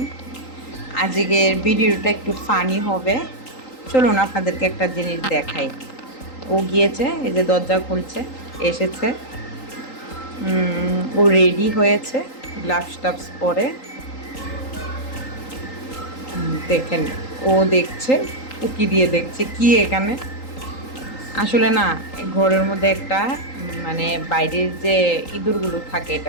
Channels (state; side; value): late; right; 3.8 ms